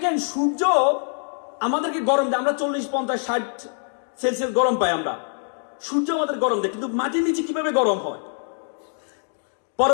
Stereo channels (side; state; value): right; silent; digital silence